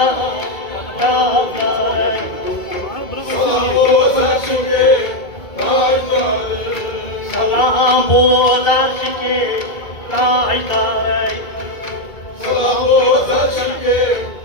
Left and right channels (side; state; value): right; late; 2.3 ms